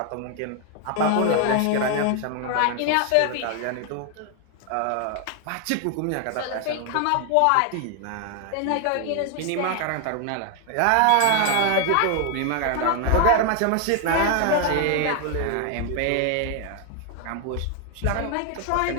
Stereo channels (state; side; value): different; both; correlation 0.00